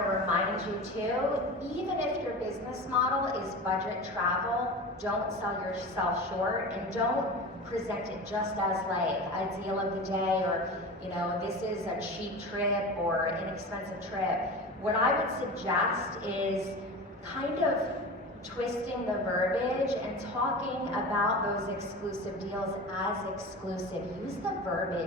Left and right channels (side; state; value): both; normal; correlation 0.31